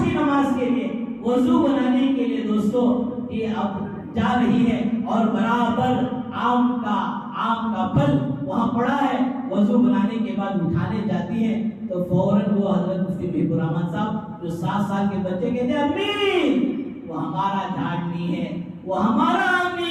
کی نماز کے لیے، وضو بنانے کے لیے دوستو یہ اب جا رہی ہے اور برابر آم کا پھل وہاں پڑا ہے. وضو بنانے کے بعد اٹھانے جاتی ہے تو فوراً وہ حضرت مفتی محب الرحمان صاحب جو 7 سال کے بچے کہتے ہیں امی وہ ہمارا جھاڑ نہیں ہے، وہ ہمارا آم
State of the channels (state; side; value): identical; both; correlation 1.00